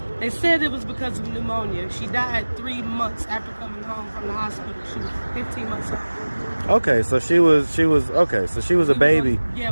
they said it was because of pneumonia. She died 3 months after coming home from the hospital. She was 15 months old. Okay, so she was a baby.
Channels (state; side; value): inverted; both; correlation -1.00